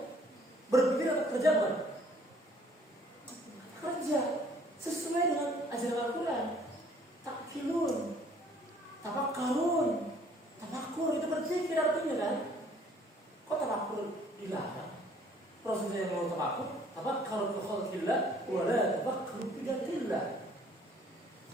berpikir atau kerja bukan? Kerja sesuai dengan dilarang. Rasulullah yang mau takut, tafakkaru fi khalqillah wa la tafakkaru fi dzikrillah.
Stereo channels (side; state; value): both; normal; correlation 0.58